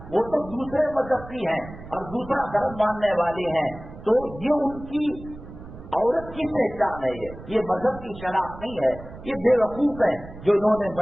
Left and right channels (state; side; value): noise; right; rumble, 15 dB below the sound